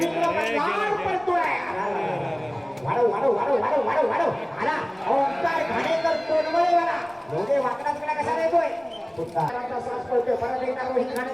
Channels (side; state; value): left; noise; rumble, 30 dB below the sound